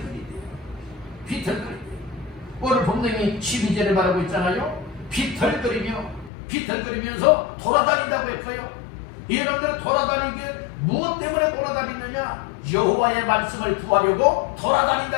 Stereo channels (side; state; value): right; drops out; at 6.3 s